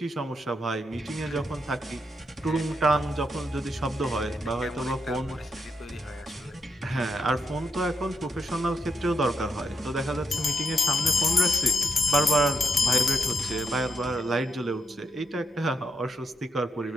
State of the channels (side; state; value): both; normal; correlation 0.83